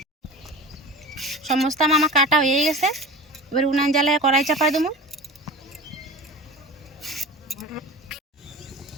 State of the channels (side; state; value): both; normal; correlation 0.34